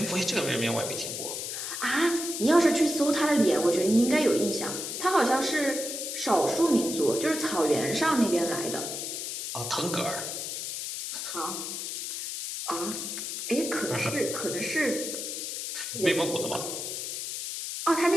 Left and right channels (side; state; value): left; noise; hiss, 5 dB below the sound